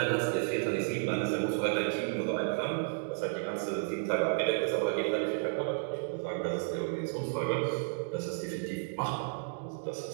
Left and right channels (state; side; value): silent; left; digital silence